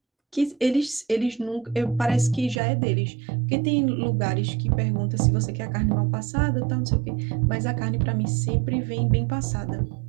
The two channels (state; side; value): drops out; left; at 2.6 s